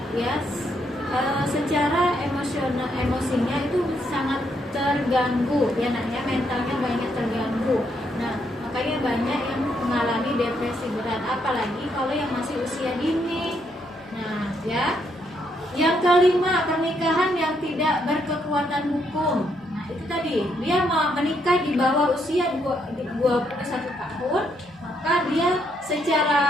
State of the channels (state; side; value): normal; both; correlation 0.75